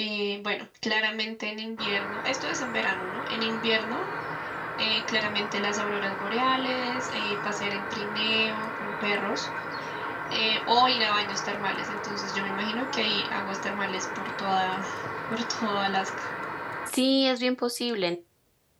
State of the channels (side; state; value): both; identical; correlation 1.00